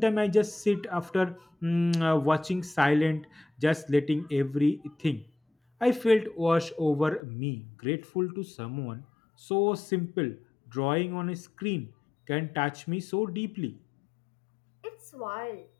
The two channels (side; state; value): right; drops out; at 7.2 s